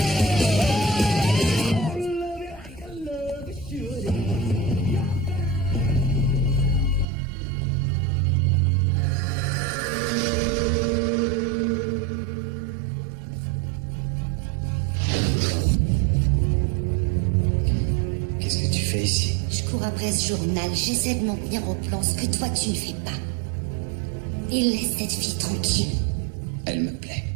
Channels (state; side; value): drops out; left; at 7.1 s